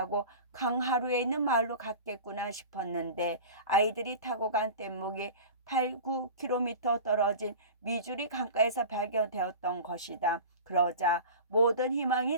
강하루에 있는 마을로 갔겠구나 싶었는데 아이들이 타고 간 뗏목이 8, 9km 떨어진 미주리 강가에서 발견되었던 것이다. 그러자 모든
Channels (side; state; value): both; inverted; correlation -0.35